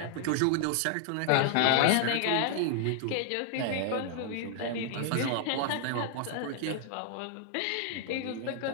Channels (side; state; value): both; different; correlation 0.00